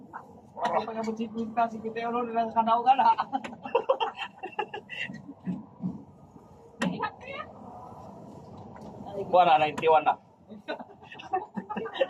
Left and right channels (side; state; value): both; identical; correlation 1.00